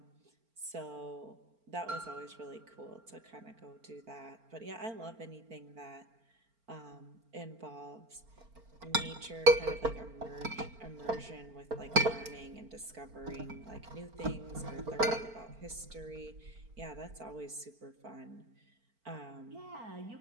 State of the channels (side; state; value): left; late; 4.4 ms